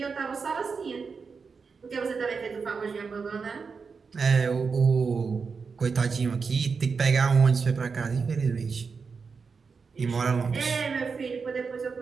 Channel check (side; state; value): left; quieter; 5.2 dB